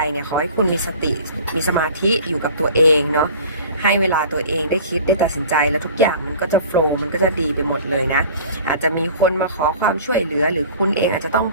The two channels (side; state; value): both; inverted; correlation -0.44